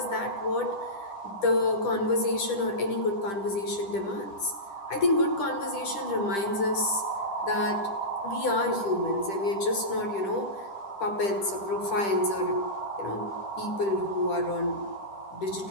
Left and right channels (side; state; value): right; late; 10 ms